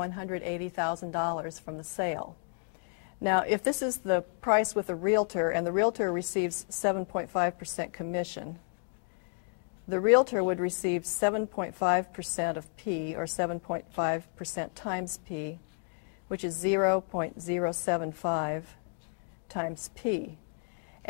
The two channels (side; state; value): right; silent; 57 dB below the other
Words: from the sale. Now, if this is the price with a realtor and the realtor receives 7.5% commission, the realtor would receive 7.5% of P, or 7.5% times P, which is 0.075 times P.